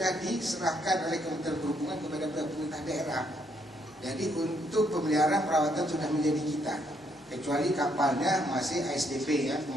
diserahkan oleh Kementerian Perhubungan kepada pemerintah daerah. Jadi untuk pemeliharaan perawatan sudah menjadi kita, kecuali kapalnya masih ASDP ya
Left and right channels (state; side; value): normal; both; correlation 0.72